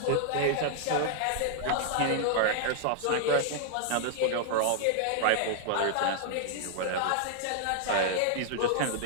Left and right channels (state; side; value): different; both; correlation -0.01